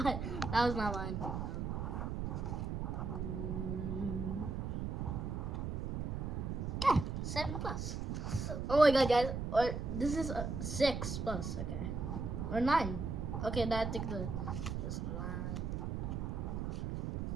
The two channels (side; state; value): right; noise; rumble, 2 dB below the sound